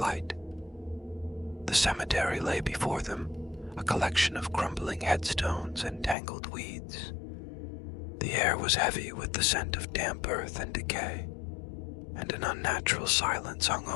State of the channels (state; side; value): drops out; right; at 6.2 s